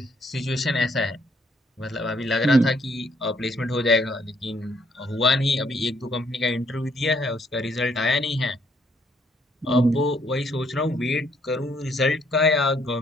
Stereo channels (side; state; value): both; normal; correlation 0.68